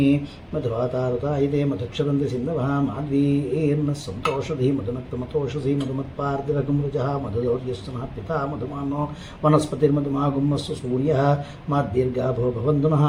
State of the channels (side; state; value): both; identical; correlation 1.00